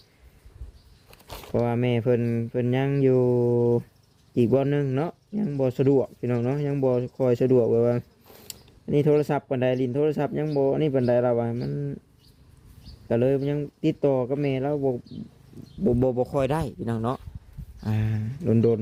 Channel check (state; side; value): identical; both; correlation 1.00